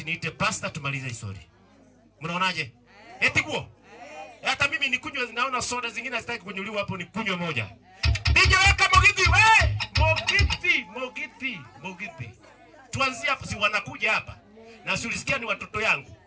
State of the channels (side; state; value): both; identical; correlation 1.00